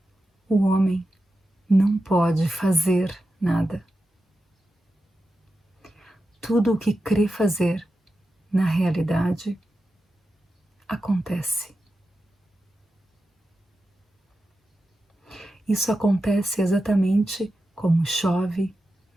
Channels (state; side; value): normal; both; correlation 0.91